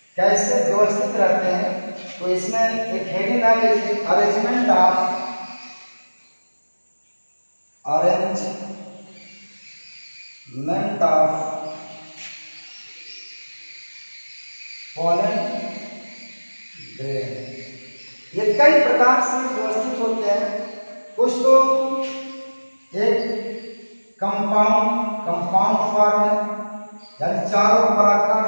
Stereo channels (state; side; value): inverted; both; correlation -1.00